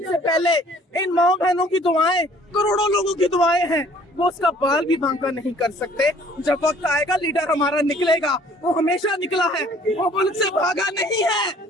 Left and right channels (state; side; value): normal; both; correlation 0.56